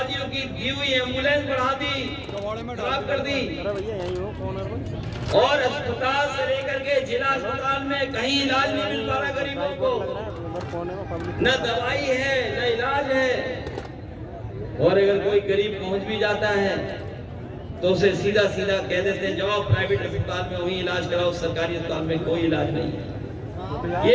की दी हुई एम्बुलेंस बढ़ा दी, खराब कर दी, और अस्पताल से लेकर के जिला अस्पताल में कहीं इलाज नहीं मिल पा रहा गरीबों को, न दवाई है न इलाज है। और अगर कोई गरीब पहुंच भी जाता है तो उसे सीधा सीधा कह देते हैं जाओ प्राइवेट अस्पताल में वहीं इलाज कराओ, सरकारी अस्पताल में कोई इलाज नहीं है। ये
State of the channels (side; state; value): both; identical; correlation 1.00